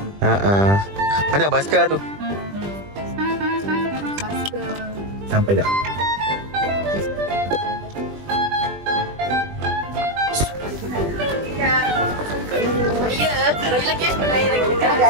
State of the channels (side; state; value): left; late; 20 ms